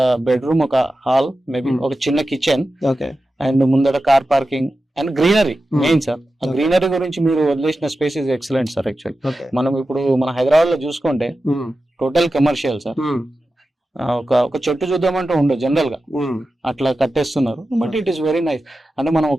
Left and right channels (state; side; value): normal; both; correlation 0.93